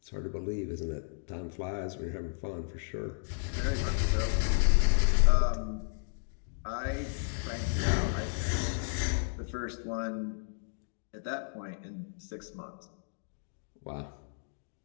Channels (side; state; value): right; silent; digital silence